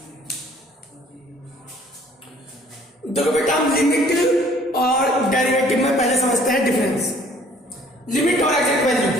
देखो बेटा, हम लिमिट और डेरिवेटिव में पहले समझते हैं डिफरेंस। लिमिट और एग्जैक्ट वैल्यू,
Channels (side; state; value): both; normal; correlation 0.57